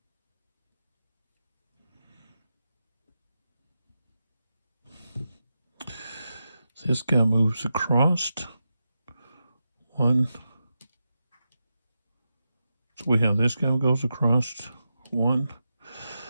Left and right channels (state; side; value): inverted; both; correlation -0.90